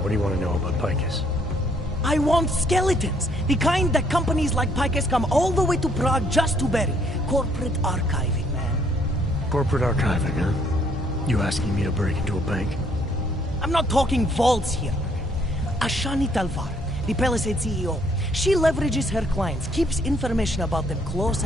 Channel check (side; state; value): both; normal; correlation 0.67